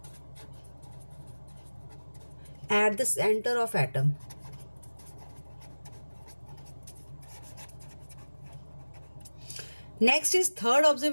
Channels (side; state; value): both; inverted; correlation -1.00